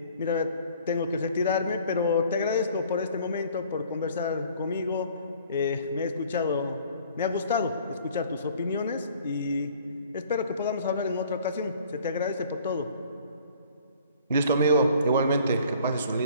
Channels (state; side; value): inverted; both; correlation -0.54